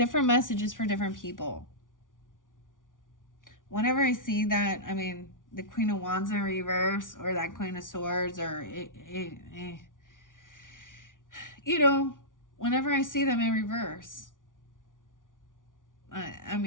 messages for different people. Whenever I see that, I mean, the Queen of Wands in reverse, or that Queen of Swords, or you know, whenever I see them in reverse, I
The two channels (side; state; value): right; late; 0.88 ms